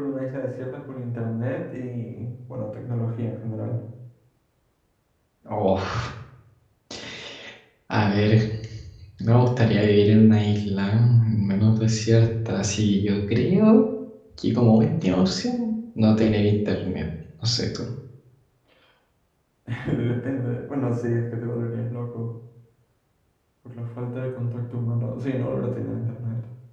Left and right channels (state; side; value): identical; both; correlation 1.00